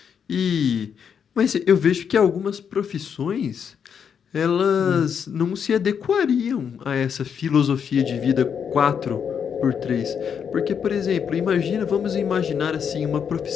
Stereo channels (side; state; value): right; quieter; 7.4 dB